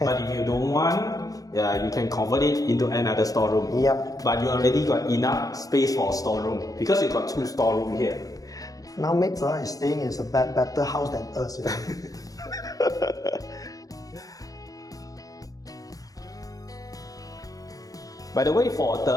But if you don't want, you can convert it into another storeroom. Yep. But you already got enough space for a storeroom because you got 2 storeroom here. Now maids are staying in a better house than us. You know? By the way, for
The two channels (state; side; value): late; right; 0.17 ms